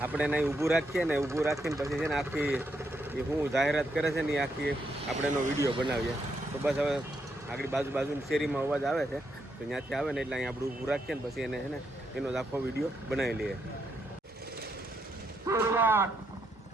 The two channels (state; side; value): normal; both; correlation 0.78